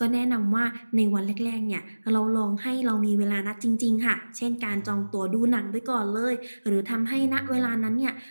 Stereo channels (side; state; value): both; inverted; correlation -1.00